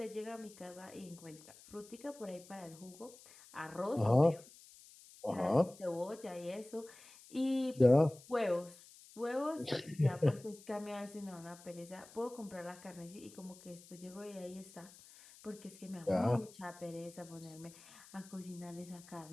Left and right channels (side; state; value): left; noise; hiss, 21 dB below the sound